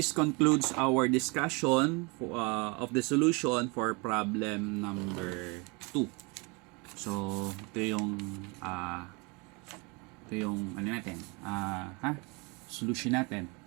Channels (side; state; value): left; quieter; 29.1 dB